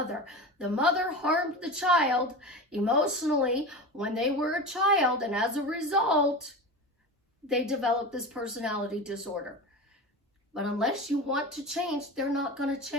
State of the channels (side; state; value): both; normal; correlation 0.27